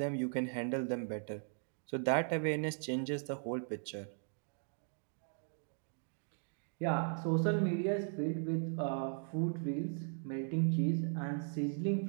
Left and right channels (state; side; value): silent; left; 52 dB below the other